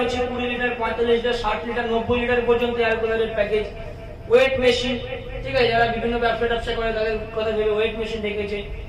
20 লিটার, 45 লিটার, 60 লিটার, 90 লিটার পর্যন্ত এয়ার কুলারের প্যাকেজ। ওয়েট মেশিন, ঠিক আছে, যারা বিভিন্ন ব্যবসা করে তাদের কথা ভেবে ওয়েট মেশিন রেখেছে।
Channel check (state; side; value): identical; both; correlation 1.00